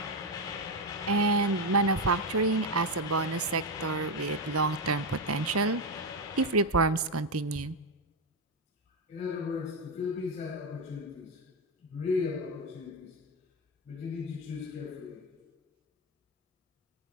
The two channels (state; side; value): normal; both; correlation 0.07